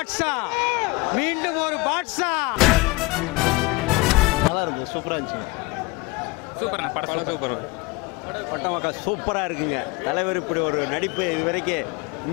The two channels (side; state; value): right; quieter; 23.5 dB